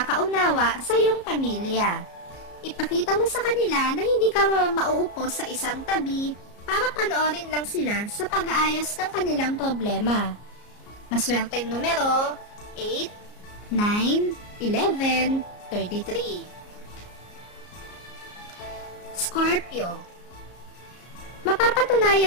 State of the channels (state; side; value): late; right; 34 ms